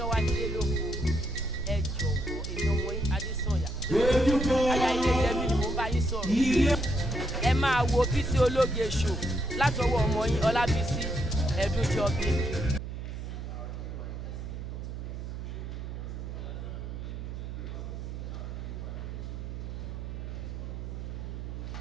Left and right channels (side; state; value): right; noise; hum, 7 dB below the sound